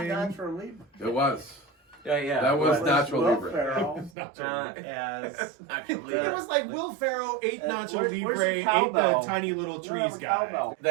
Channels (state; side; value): drops out; left; at 4.1 s